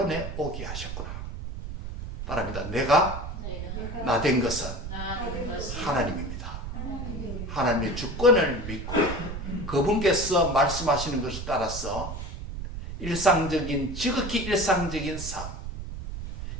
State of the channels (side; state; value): right; noise; rumble, 7 dB below the sound